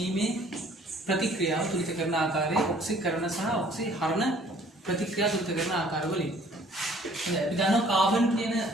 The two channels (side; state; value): both; normal; correlation 0.56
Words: ප්‍රතික්‍රියාව තුලිත කරන ආකාරය ඔක්සිකරණ සහ ඔක්සිහරණ ප්‍රතික්‍රියා තුලිත කරන ආකාර වලින්. හොඳයි. අපි දන්නවා කාබන් කියන